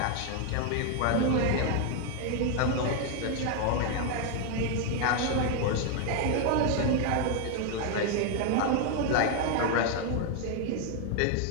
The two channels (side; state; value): both; different; correlation 0.01